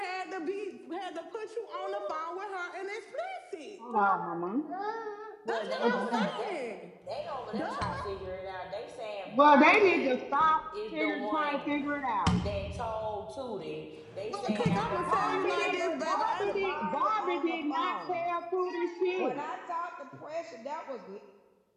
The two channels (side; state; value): both; identical; correlation 1.00